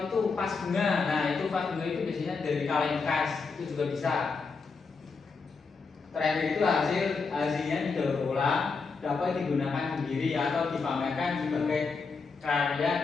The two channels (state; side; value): quieter; right; 4.7 dB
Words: itu vas bunga. Nah, itu vas bunga itu biasanya dari kaleng bekas, itu juga bisa. Terakhir itu hasilnya didaur ulang, dapat digunakan sendiri atau dipamerkan sebagai